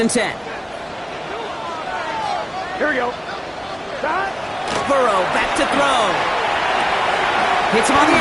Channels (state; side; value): identical; both; correlation 1.00